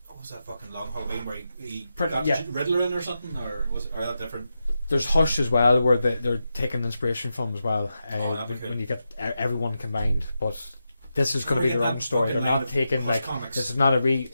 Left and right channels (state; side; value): inverted; both; correlation -0.88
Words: What was that fucking long Halloween where he Pretty- got yeah. Riddler in or something, or was it, or that different? There's Hush as well, where they're taking inspiration from as well. Oh, that'd be cool. When you get everyone combined, but this is going to Or be their get own that story. They're fucking line not of taking Hush like comics. this is not